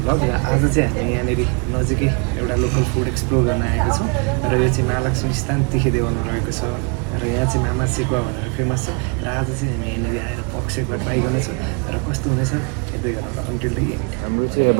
आज चाहिँ हामी यहाँनिर नजिकै एउटा लोकल फुड एक्सप्लोर गर्न आएको छौँ र यो चाहिँ महालक्ष्मी स्थान तिखेदेवनमा रहेको छ र यहाँ चाहिँ मामा सेकुवा भनेर फेमस छ र आज चाहिँ हामी यहाँनिर आएर पक सेकुवा ट्राई गर्नेछौँ र कस्तो हुनेछ यतै गरेर अन्टिल द एन्ड। हाम्रो चाहिँ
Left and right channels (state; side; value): quieter; left; 35.6 dB